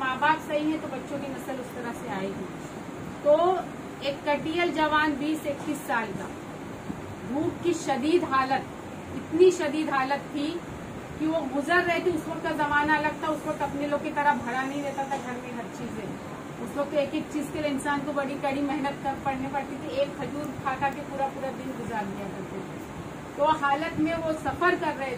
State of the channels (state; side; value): identical; both; correlation 1.00